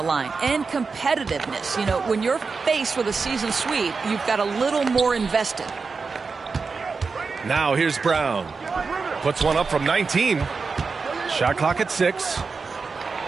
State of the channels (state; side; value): quieter; left; 4.7 dB